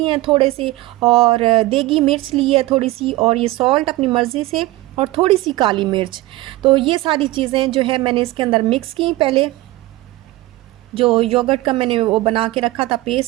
हैं थोड़े से, और देगी मिर्च ली है थोड़ी सी, और ये सॉल्ट अपनी मर्ज़ी से, और थोड़ी सी काली मिर्च। तो ये सारी चीज़ें जो है मैंने इसके अंदर मिक्स की पहले, जो योगर्ट का मैंने वो बना के रखा था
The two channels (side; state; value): left; quieter; 18.7 dB